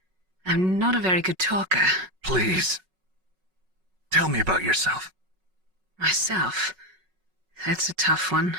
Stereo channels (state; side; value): late; left; 5.4 ms